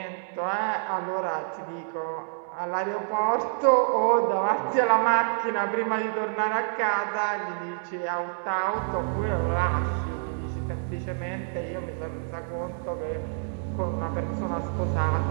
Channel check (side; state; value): left; silent; digital silence